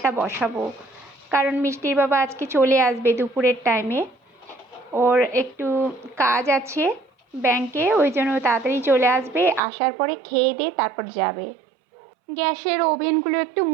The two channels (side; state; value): left; drops out; at 9.6 s